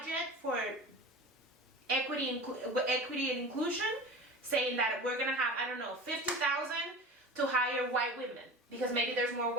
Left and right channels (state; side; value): normal; both; correlation 0.35